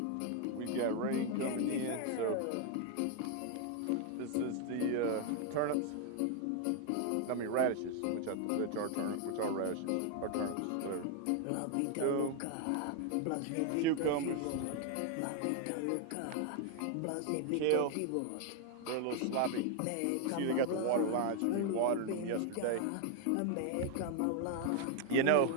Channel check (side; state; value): both; different; correlation 0.00